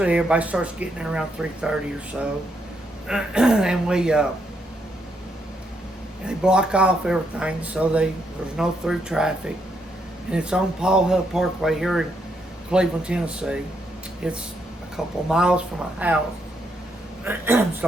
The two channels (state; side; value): normal; both; correlation 0.77